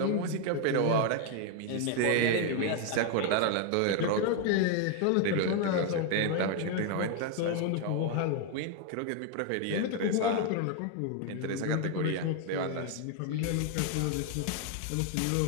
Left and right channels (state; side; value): different; both; correlation 0.01